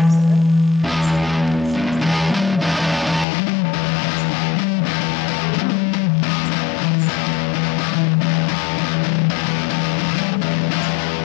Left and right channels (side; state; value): right; drops out; at 3.2 s